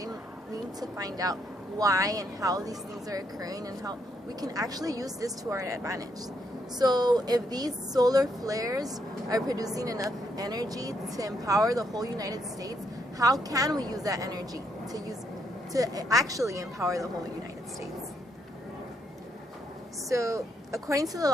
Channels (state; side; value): normal; both; correlation 0.75